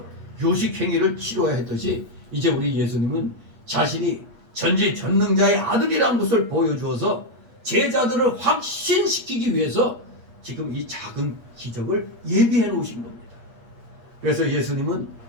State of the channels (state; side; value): late; left; 8.5 ms